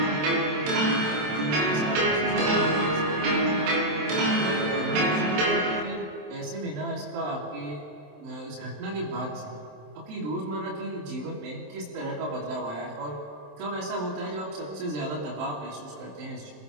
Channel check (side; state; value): left; late; 27 ms